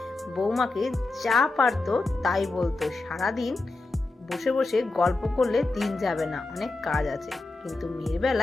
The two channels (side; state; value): right; quieter; 3.2 dB